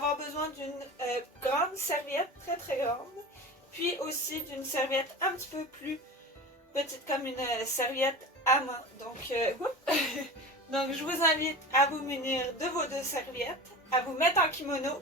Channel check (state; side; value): normal; both; correlation 0.31